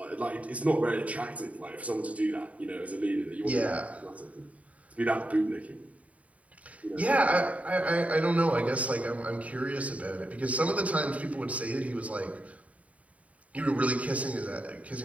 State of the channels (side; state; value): left; late; 0.068 ms